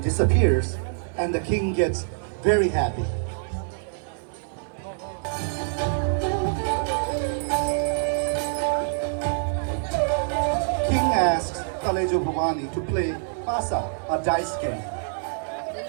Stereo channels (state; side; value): silent; left; 57 dB below the other